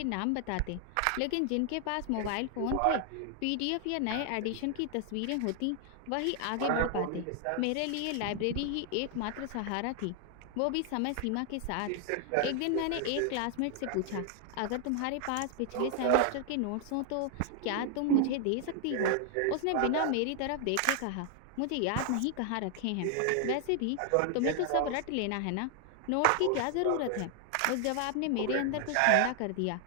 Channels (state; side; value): different; both; correlation 0.00